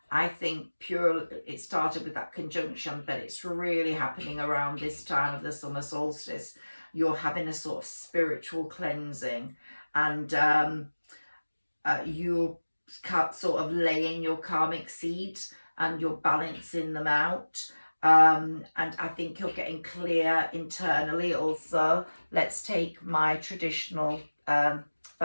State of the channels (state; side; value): inverted; both; correlation -1.00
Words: I think, it started with that conjunction, but it's really happening around this time of the summer solstice. You're having a sort of spiritual cleansing, and you're sort of laying your karmic seeds and you're balancing them out. And I think you're getting clear internally also. Let's take my traditional,